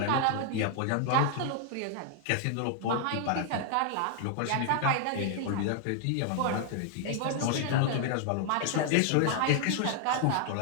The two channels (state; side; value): different; both; correlation 0.00